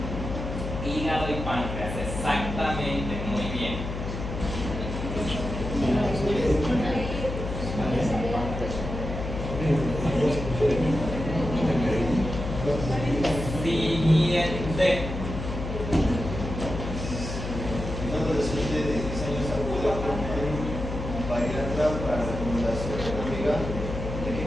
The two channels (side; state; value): left; noise; hum, 6 dB below the sound